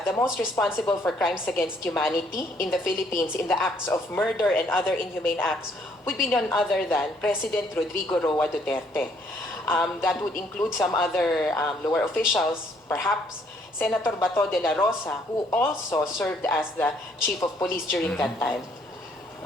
the most responsible for crimes against humanity in the Philippines in the acts of murder and other inhumane acts would be none other than President Rodrigo Roa Duterte. That would include some other lower officials, perhaps Senator Bato de la Rosa, who also served as the chief of police during that time.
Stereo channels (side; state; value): both; normal; correlation 0.66